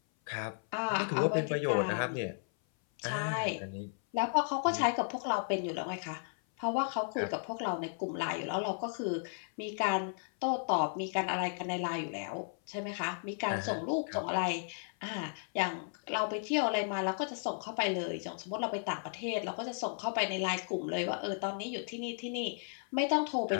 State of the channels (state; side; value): silent; right; 55 dB below the other